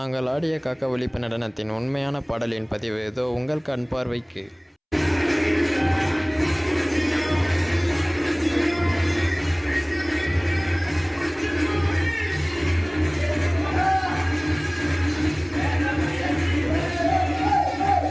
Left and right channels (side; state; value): both; identical; correlation 1.00